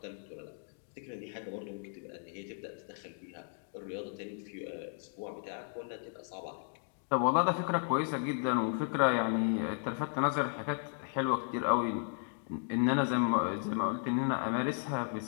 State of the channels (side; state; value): right; silent; 55 dB below the other